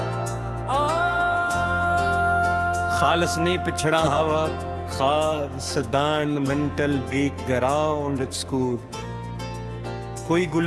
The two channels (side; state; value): both; identical; correlation 1.00